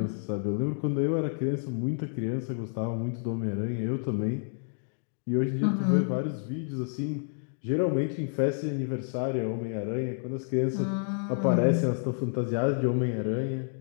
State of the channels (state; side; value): silent; right; digital silence